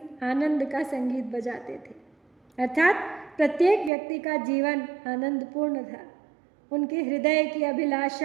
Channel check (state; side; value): drops out; left; at 3.9 s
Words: आनंद का संगीत बजाते थे। अर्थात प्रत्येक व्यक्ति का जीवन आनंदपूर्ण था। उनके हृदय की